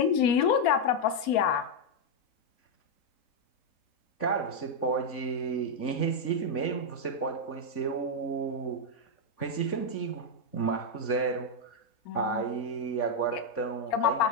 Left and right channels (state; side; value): late; right; 4.3 ms